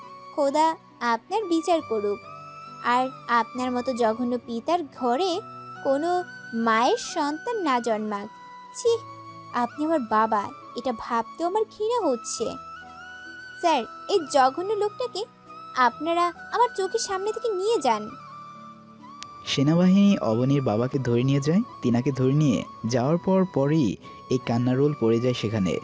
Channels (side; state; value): both; identical; correlation 1.00